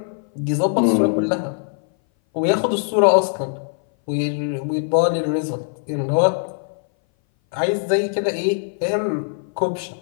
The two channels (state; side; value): silent; right; 60 dB below the other